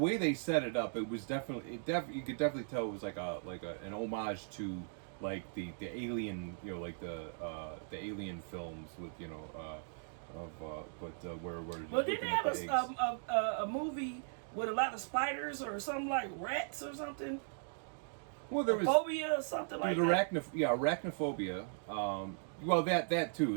they set it up, it was definitely you could definitely tell it was like an homage to like the Alien, like the Alien films with where Well, didn't they have a movie with a lot of spiders or something like rats or something? Well, there was phobia or something like that. Arachnophobia. Well, that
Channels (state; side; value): silent; left; digital silence